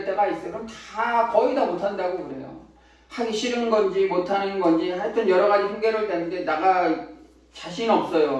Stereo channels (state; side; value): identical; both; correlation 1.00